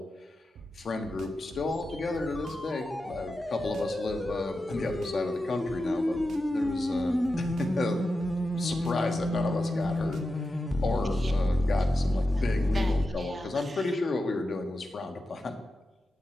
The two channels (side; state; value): both; normal; correlation 0.90